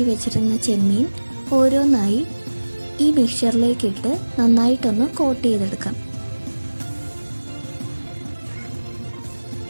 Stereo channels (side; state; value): both; inverted; correlation -1.00